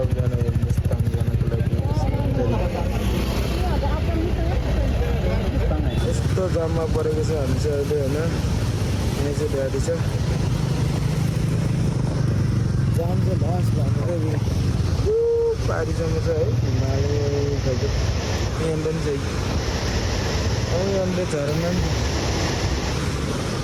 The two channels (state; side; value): identical; both; correlation 1.00